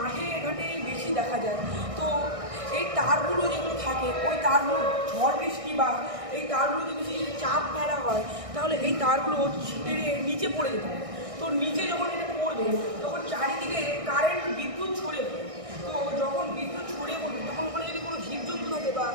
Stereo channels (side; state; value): left; late; 1.6 ms